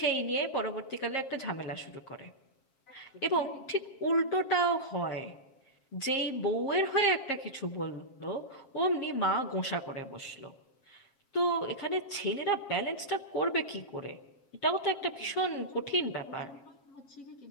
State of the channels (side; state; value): right; late; 7.4 ms